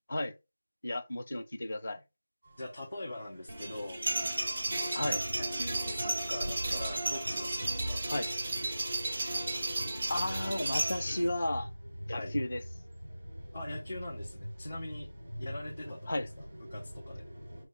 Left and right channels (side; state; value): both; inverted; correlation -0.94